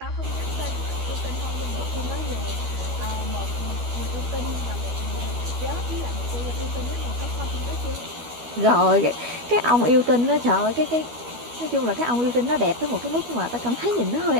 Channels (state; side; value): late; left; 12 ms